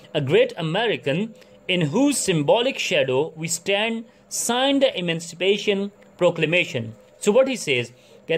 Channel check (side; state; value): both; identical; correlation 1.00